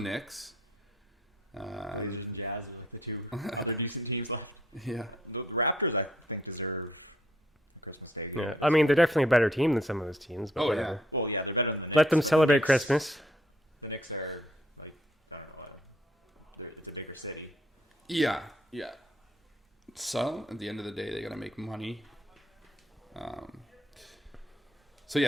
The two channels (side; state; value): both; normal; correlation 0.66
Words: Blazers and Jazz and the two other decent teams left. Yeah. The Raptors, I think, deserve Christmas Day. Yeah, I mean they're definitely a better team than some of those teams. But Oh, whatever. Well, yeah, they're better than the Knicks. Let them celebrate The Knicks- Christmas. The Knicks are like I don't know. It's a bigger city. Yeah. So at the end of the day, they gotta make money.